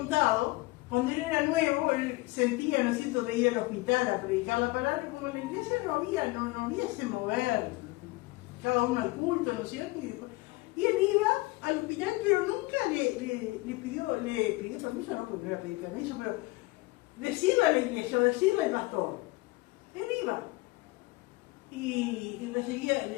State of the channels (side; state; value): right; quieter; 22.2 dB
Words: cuando él era nuevo, él sentía, ¿no es cierto?, de ir al hospital a predicar la palabra, como en la iglesia no había ese mover, cada uno al culto, ¿no es cierto? Y él iba al hospital, pero nunca le pidió permiso, no porque no era pedir permiso, pero decirle a la iglesia o decirle al pastor. Él iba y